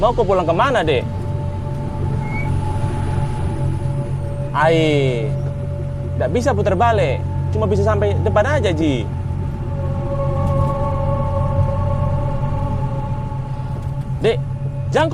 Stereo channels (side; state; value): both; identical; correlation 1.00